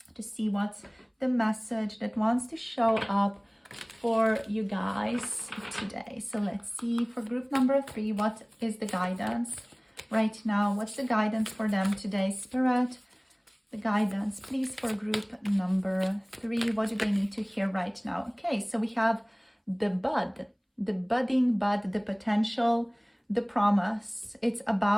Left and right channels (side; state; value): both; identical; correlation 1.00